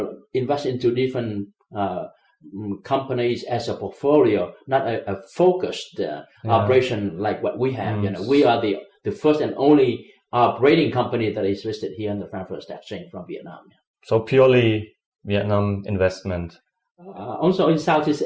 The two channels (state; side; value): identical; both; correlation 1.00